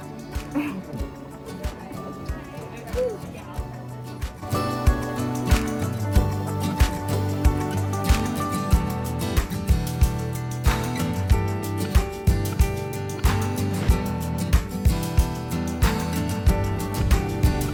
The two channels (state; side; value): identical; both; correlation 1.00